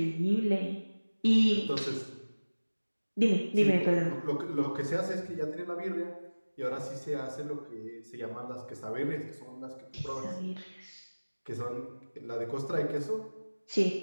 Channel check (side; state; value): both; inverted; correlation -1.00